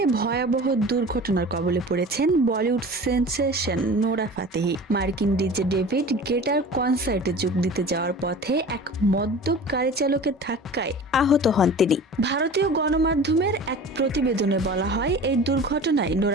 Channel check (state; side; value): normal; both; correlation 0.39